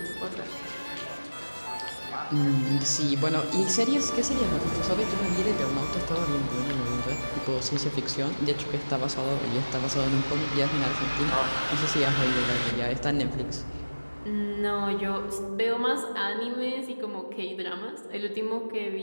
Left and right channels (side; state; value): both; inverted; correlation -1.00